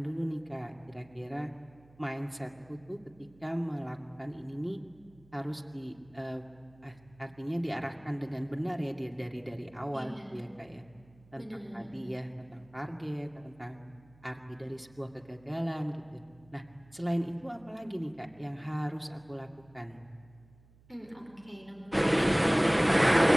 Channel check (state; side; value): noise; right; hum, 26 dB below the sound